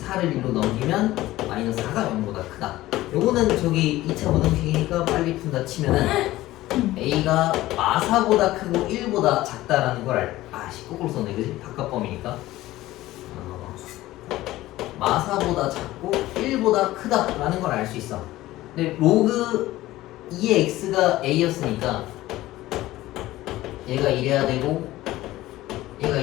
1로 넘기면 마이너스 4가 0보다 크다. 요거는 저기 2차 부등식이니까 빨리 푼다 치면은 a가 마4보다 크고 1보다 작다라는 걸 거꾸로 썼네, 그지? 바깥범위니까 마4보다 작고 1보다 크다라는 걸 알 수 있어. 근데 로그 2의 x가 a였으니까 얘가 이래야 되고 얘가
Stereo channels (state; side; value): quieter; right; 16.5 dB